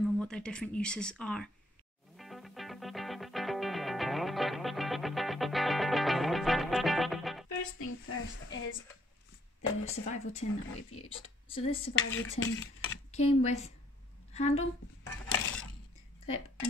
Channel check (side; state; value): both; normal; correlation 0.68